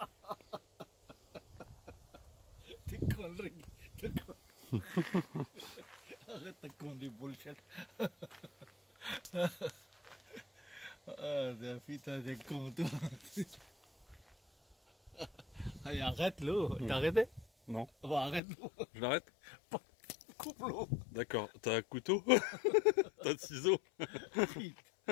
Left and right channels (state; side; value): drops out; right; at 18.4 s